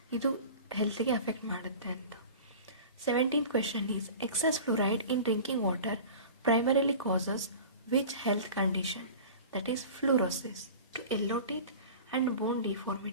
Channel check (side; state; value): both; inverted; correlation -0.38